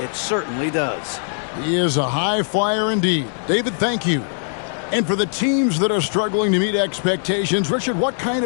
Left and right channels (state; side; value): silent; right; digital silence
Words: certainly does. He is a high flyer indeed. David, thank you. And for the teams that are struggling to meet expectations, Richard, what kind